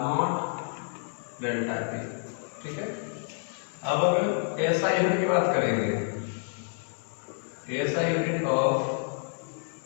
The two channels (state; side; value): silent; right; 59 dB below the other